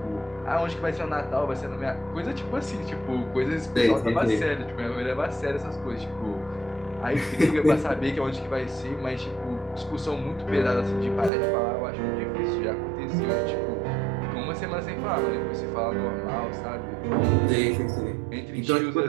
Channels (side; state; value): left; drops out; at 11.3 s